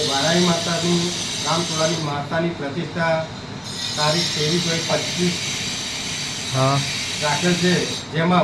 વારાઈ માતાની રામચોળાની માતાની પ્રતિષ્ઠા તારીખ 23/25 હા રાખેલ છે,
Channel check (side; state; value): both; identical; correlation 1.00